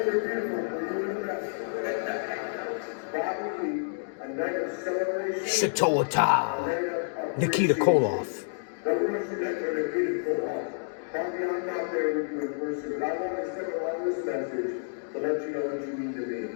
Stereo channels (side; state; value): right; silent; digital silence